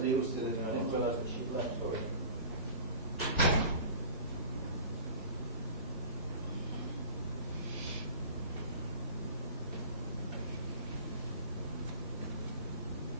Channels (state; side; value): inverted; both; correlation -0.39